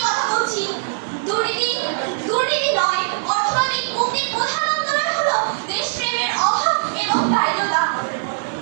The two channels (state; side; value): silent; left; digital silence